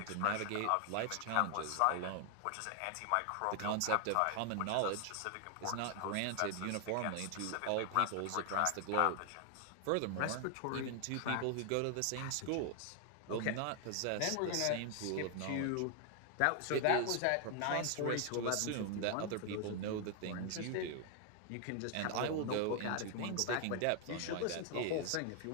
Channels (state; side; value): different; both; correlation 0.00